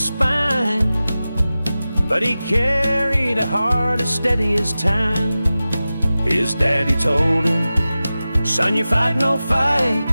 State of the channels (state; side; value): inverted; both; correlation -0.95